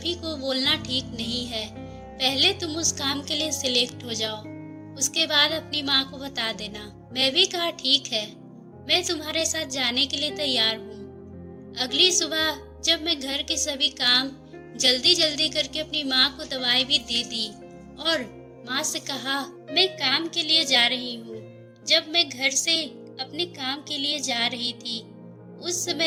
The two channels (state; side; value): identical; both; correlation 1.00